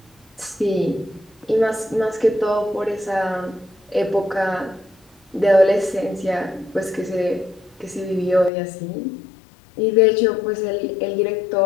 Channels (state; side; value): drops out; right; at 8.5 s